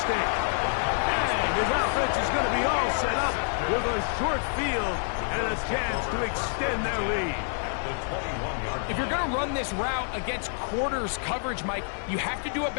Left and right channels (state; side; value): silent; right; 60 dB below the other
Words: And his offense is going to be all set up with a short field and a chance to extend their lead. If you're going to run this route against quarters coverage, Mike, you have to do a